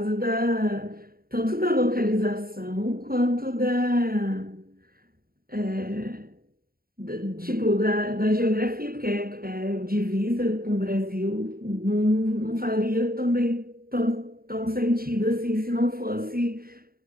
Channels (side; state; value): left; late; 0.43 ms